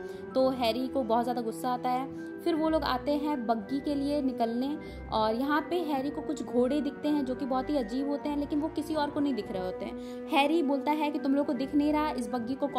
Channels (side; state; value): both; identical; correlation 1.00